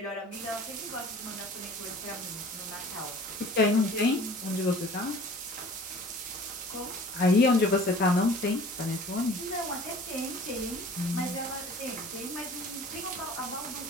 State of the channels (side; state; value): both; normal; correlation 0.47